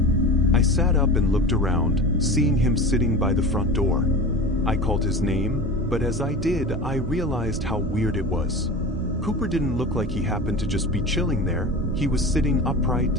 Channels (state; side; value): normal; both; correlation 0.31